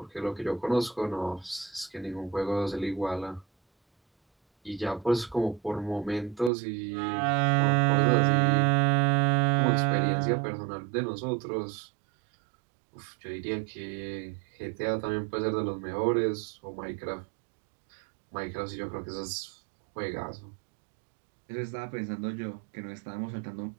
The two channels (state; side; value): drops out; left; at 6.5 s